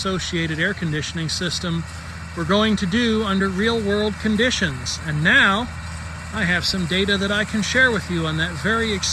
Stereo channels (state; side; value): identical; both; correlation 1.00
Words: air conditioning system were going to do under real-world conditions. And now I have some data that I can share with you on that very